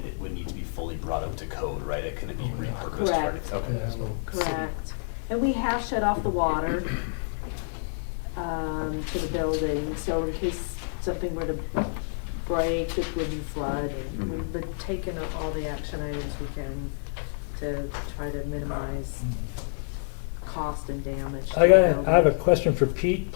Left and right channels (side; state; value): right; silent; digital silence